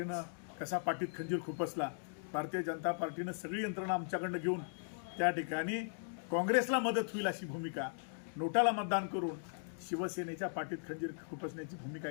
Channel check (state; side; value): silent; right; digital silence